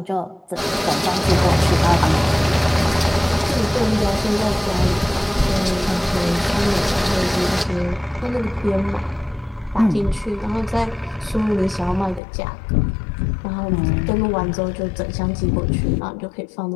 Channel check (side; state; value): right; drops out; at 12.2 s